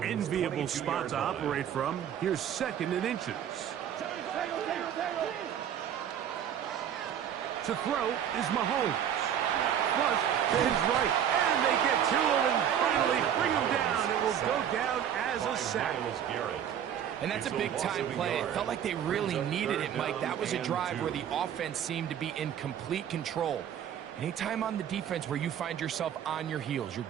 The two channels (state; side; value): quieter; left; 9.4 dB